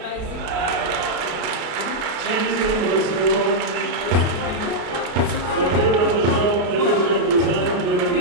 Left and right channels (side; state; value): left; late; 33 ms